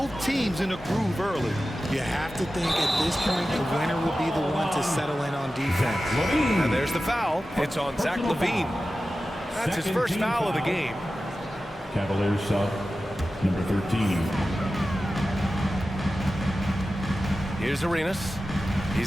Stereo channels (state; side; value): normal; both; correlation 0.94